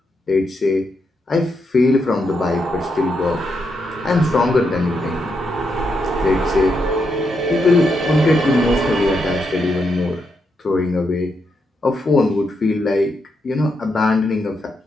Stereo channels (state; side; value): normal; both; correlation 0.81